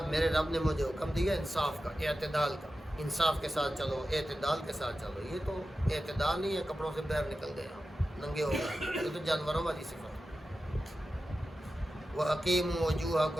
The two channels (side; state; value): both; normal; correlation 0.93